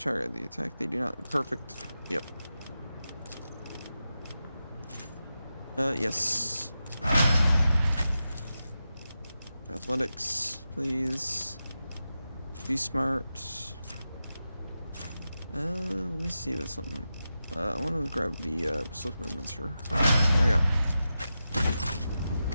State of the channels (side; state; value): both; inverted; correlation -0.91